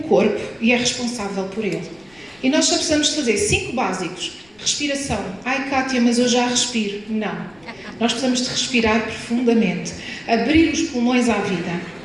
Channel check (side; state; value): left; noise; rumble, 30 dB below the sound